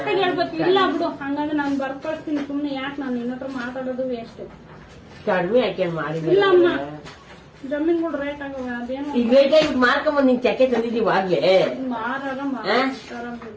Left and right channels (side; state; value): both; identical; correlation 1.00